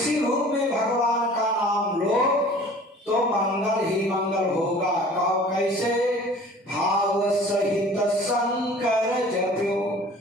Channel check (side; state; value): both; normal; correlation 0.47